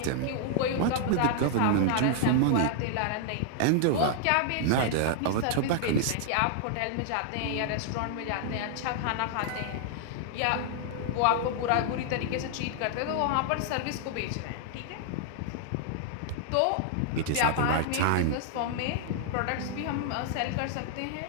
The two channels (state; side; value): different; both; correlation -0.01